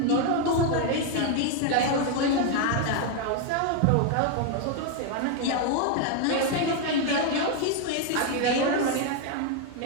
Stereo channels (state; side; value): different; both; correlation 0.01